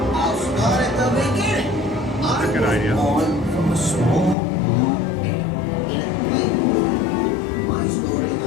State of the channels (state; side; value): drops out; right; at 4.4 s